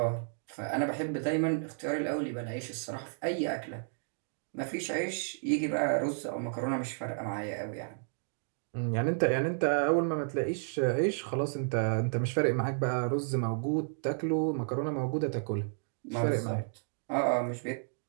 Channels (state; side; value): silent; left; digital silence